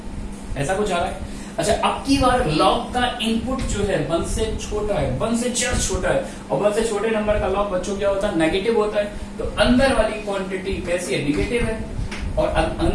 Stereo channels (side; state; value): both; identical; correlation 1.00